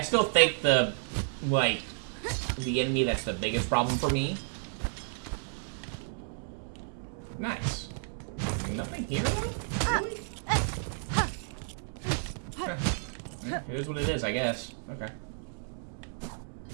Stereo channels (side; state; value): left; silent; digital silence